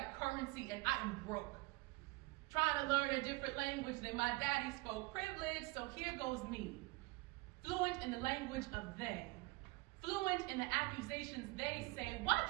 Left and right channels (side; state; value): left; quieter; 24.6 dB